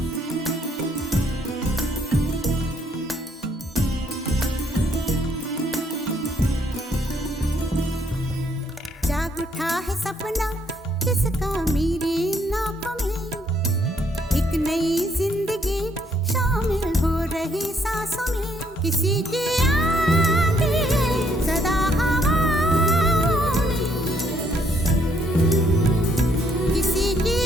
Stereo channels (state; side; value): normal; both; correlation 0.69